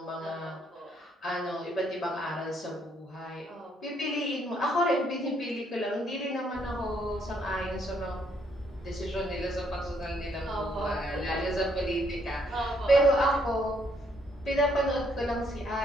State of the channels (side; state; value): both; normal; correlation 0.70